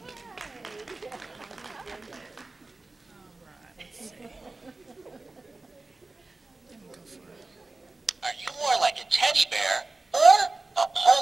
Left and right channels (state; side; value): quieter; left; 3.2 dB